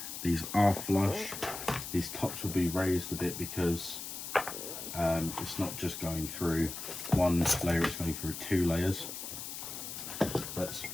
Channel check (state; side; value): noise; left; hiss, 8 dB below the sound